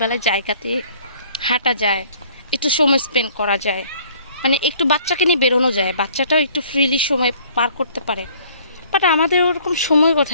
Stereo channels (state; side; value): inverted; both; correlation -0.57